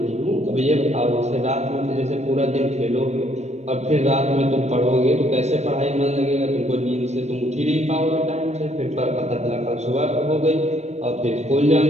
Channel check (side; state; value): left; late; 0.32 ms